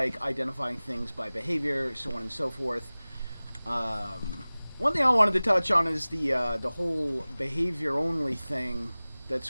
identifying things by behavior, so on and so forth. One thing I wanted to touch on is the whole behavior only thing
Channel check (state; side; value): inverted; both; correlation -0.99